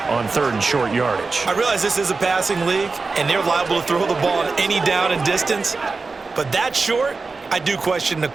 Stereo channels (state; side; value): quieter; left; 4.1 dB